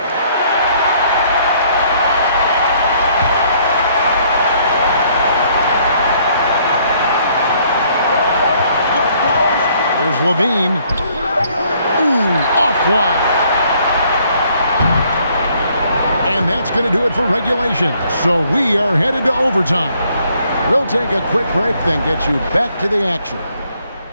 Here's Levine. Ooh, offline. And that's going to do it for regulation. So we are headed to overtime. We'll take a quick break, then get you back to the action.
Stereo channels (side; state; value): both; inverted; correlation -0.65